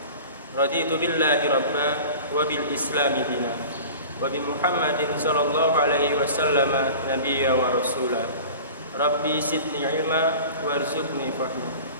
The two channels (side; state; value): both; inverted; correlation -0.39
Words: Raditu billahi rabba wa bil islami dina wa bi Muhammadin sallallahu alaihi wasallam nabiyya wa rasula. Rabbi zidni ilma warzuqni fahma.